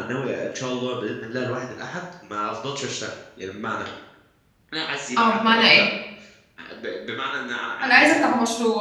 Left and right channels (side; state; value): both; identical; correlation 1.00